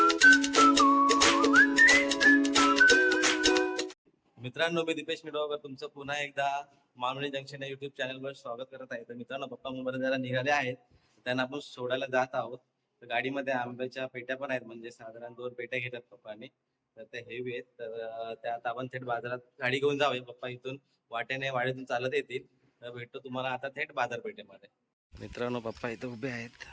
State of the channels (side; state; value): both; identical; correlation 1.00